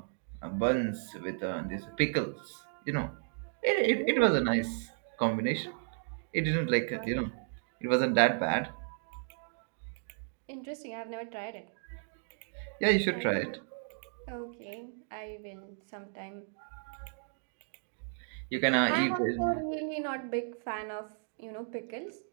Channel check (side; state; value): left; silent; digital silence